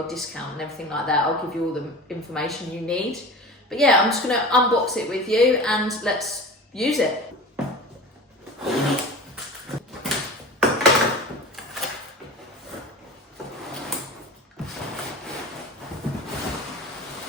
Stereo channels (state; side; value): normal; both; correlation 0.35